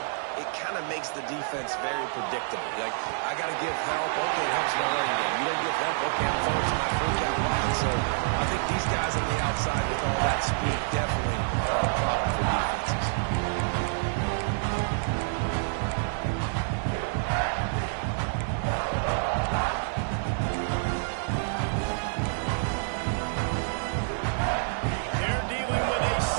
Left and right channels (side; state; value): left; silent; 59 dB below the other